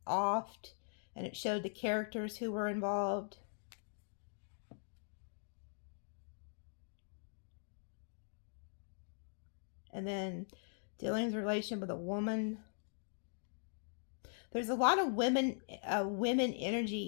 offed, and it showed the characters who were involved. And then dealings relation with a woman. There's a lot of women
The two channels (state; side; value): silent; right; digital silence